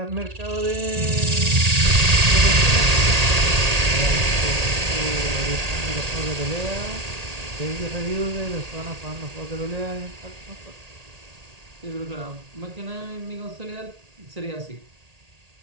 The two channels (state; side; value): late; left; 1.8 ms